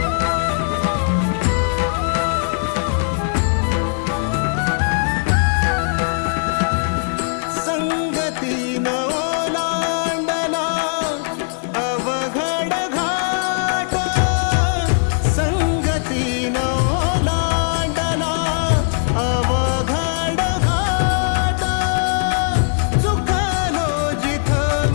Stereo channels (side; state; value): right; silent; digital silence